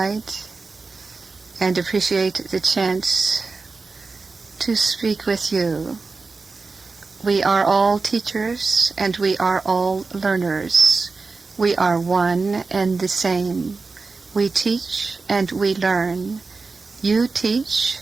and appreciate the chance to speak with you. We are all teachers and we are all learners. We are one and the same. We teach and we learn. You teach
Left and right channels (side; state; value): left; quieter; 4.1 dB